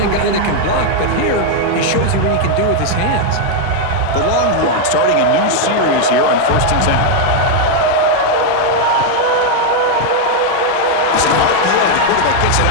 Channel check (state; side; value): different; both; correlation 0.00